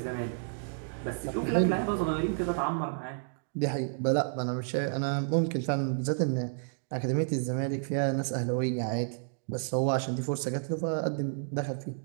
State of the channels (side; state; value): left; silent; digital silence